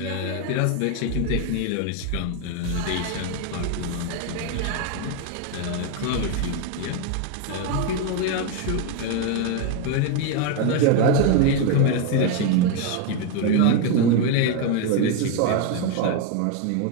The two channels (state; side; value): different; both; correlation 0.01